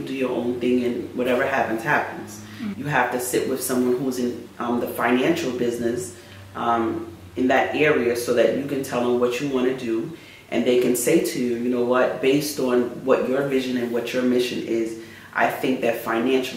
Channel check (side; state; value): both; identical; correlation 1.00